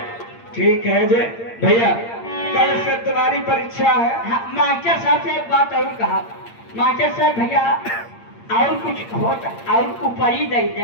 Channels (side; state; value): right; late; 8.7 ms